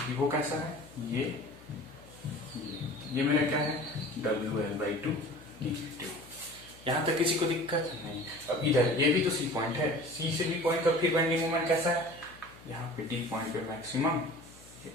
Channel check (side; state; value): left; noise; hum, 22 dB below the sound